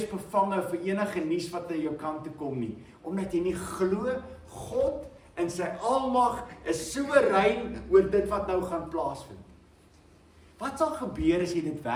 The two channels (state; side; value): identical; both; correlation 1.00